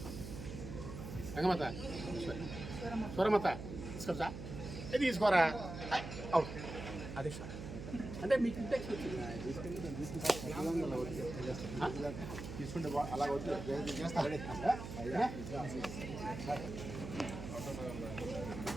రంగమత స్వరమత తీసుకొచ్చా ఇది తీసుకోరా అవుట్ అదే సార్ అంటే మీకు ఇంటెక్స్ తీసుకుంటే అలా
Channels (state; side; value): noise; right; hum, 9 dB below the sound